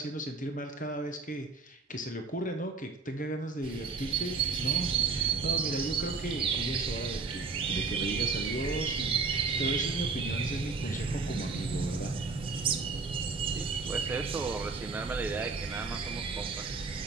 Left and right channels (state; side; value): quieter; left; 4.2 dB